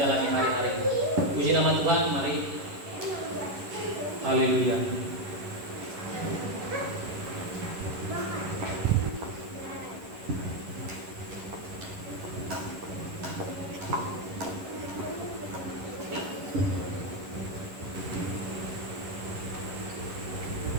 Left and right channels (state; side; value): late; left; 11 ms